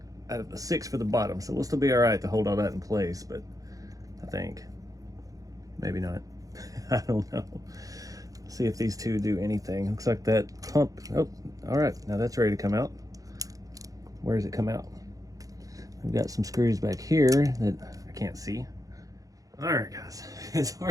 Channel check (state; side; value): late; left; 0.17 ms